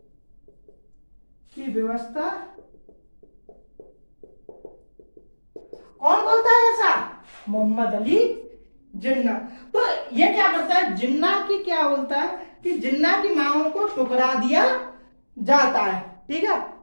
की व्यवस्था कौन बोलता है ऐसा? मोहम्मद अली जिन्ना। तो ये क्या करता है, जिन्ना की क्या बोलता है कि जिन्ना की मांगों को ठुकरा दिया जाता है, ठीक है।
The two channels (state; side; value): inverted; both; correlation -1.00